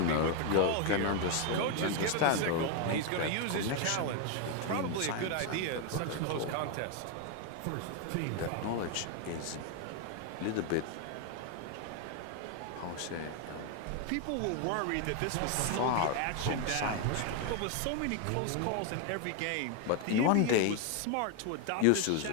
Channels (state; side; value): different; both; correlation 0.01